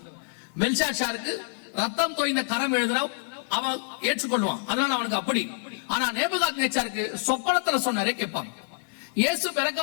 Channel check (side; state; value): right; silent; digital silence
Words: பெல்ஷாத்சாருக்கு ரத்தம் தோய்ந்த கரம் எழுதுனா அவன் ஏற்றுக்கொள்வான், அதனால அவனுக்கு அப்படி. ஆனா நேபுகாத்நேச்சாருக்கு சொப்பனத்துல சொன்னாரே கேட்பாங்க. இயேசு பிறக்க